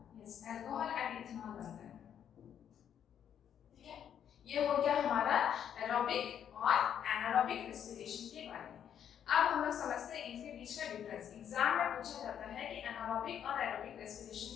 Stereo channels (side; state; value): right; quieter; 9.1 dB